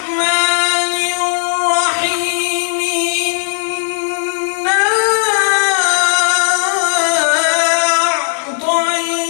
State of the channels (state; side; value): silent; right; 59 dB below the other